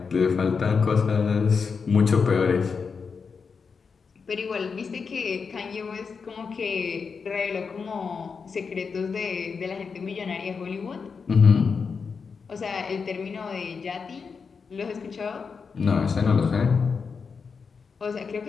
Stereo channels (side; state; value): right; quieter; 5.4 dB